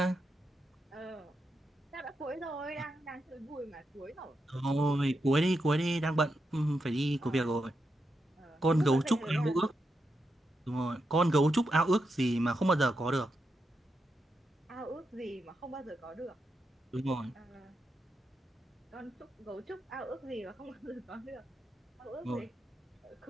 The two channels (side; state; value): both; normal; correlation 0.85